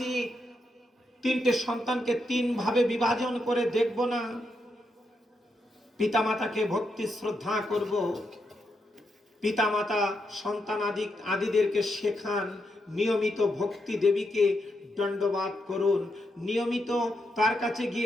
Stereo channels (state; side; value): normal; both; correlation 0.83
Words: তিনটে সন্তানকে তিন ভাবে বিভাজন করে দেখব না। পিতামাতাকে ভক্তি শ্রদ্ধা করব। পিতামাতা সন্তান আদিদেরকে শেখান, নিয়মিত ভক্তি দেবীকে দণ্ডবাদ করুন, নিয়মিত তার কাছে